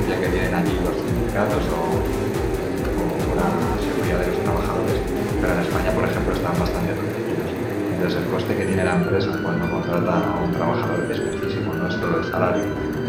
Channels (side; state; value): both; identical; correlation 1.00